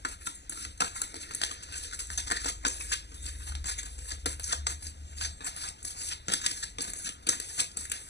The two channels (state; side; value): late; right; 0.50 ms